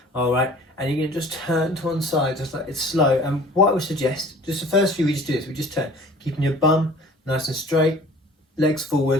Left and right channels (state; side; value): normal; both; correlation 0.47